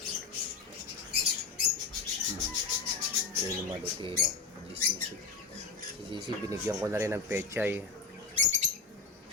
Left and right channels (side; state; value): right; quieter; 4.5 dB